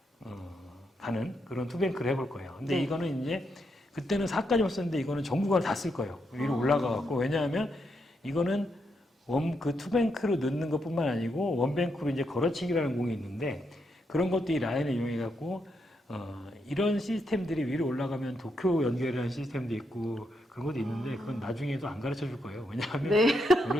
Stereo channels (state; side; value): normal; both; correlation 0.80